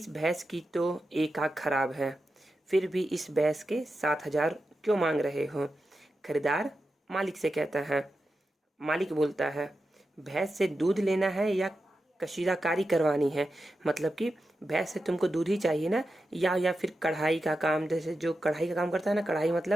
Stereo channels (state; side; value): normal; both; correlation 0.90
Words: भैंस की तो एक आँख खराब है, फिर भी इस भैंस के 7,000 क्यों मांग रहे हो। खरीदार मालिक से कहता है, मालिक बोलता है, भैंस से दूध लेना है या कशीदाकारी करवानी है। मतलब कि भैंस से तुमको दूध ही चाहिए ना, या फिर कढ़ाई का काम, जैसे जो कढ़ाई का काम करता है ना, कढ़ाई